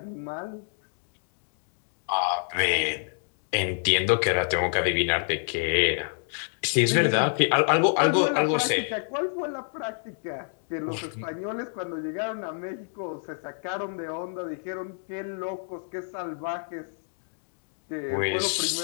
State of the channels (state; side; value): silent; right; digital silence